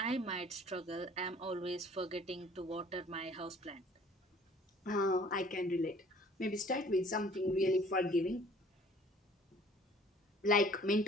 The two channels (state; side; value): normal; both; correlation 0.53